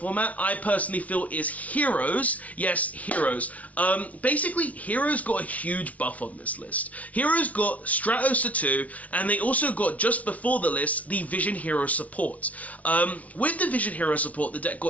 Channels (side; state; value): right; late; 0.069 ms